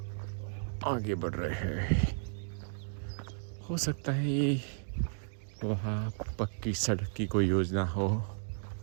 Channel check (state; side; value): silent; left; digital silence